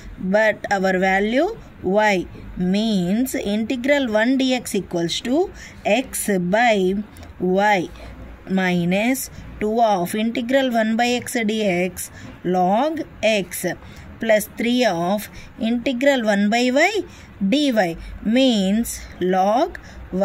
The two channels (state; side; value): identical; both; correlation 1.00